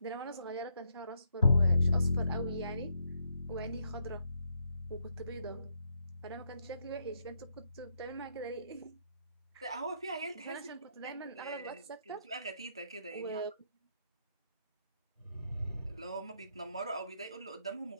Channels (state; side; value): inverted; both; correlation -0.76